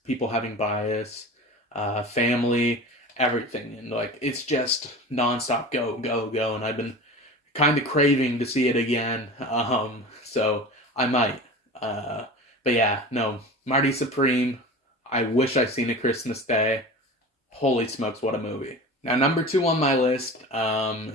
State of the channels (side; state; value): both; normal; correlation 0.34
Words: people having bias, family, everything, and like it's just nonstop go, and I've been kind of craving to see it again. So I might. But yeah, no, Marty Supreme. I wish I'd seen a Christmas Day. Holy smokes, what a movie! Now, number two on my list